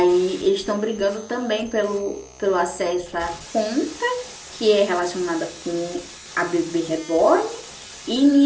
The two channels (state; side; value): identical; both; correlation 1.00